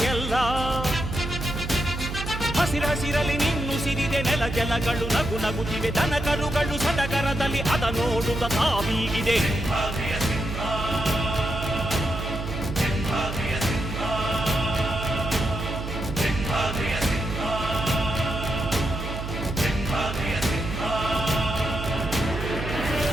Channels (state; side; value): noise; right; hum, 6 dB below the sound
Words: ಎಲ್ಲ ಹಸಿರಸಿರಲಿ ನಿನ್ನುಸಿರಿದೆ ನೆಲ ಜಲಗಳು ನಗು ನಗುತ್ತಿವೆ ದನ ಕರುಗಳು ಸಡಗರದಲ್ಲಿ ಅದ ನೋಡುತ್ತ ತಾವೀಗಿದೆ